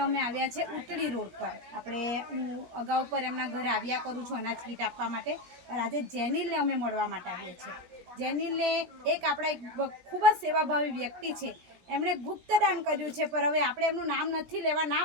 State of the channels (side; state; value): left; late; 17 ms